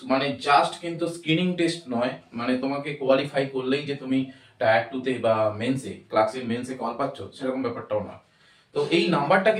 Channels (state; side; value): identical; both; correlation 1.00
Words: মানে জাস্ট কিন্তু স্ক্রিনিং টেস্ট নয়, মানে তোমাকে কোয়ালিফাই করলেই যে তুমি টায়ার 2 তে বা মেন্সে ক্লার্কশিপ মেন্সে কল পাচ্ছ সেরকম ব্যাপারটাও নয়। তো এই নাম্বারটা